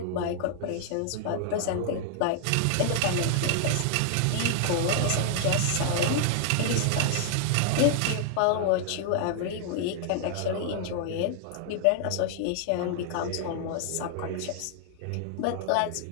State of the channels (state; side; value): different; both; correlation 0.00